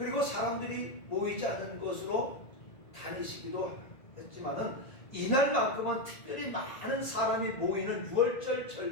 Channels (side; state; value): right; late; 1.9 ms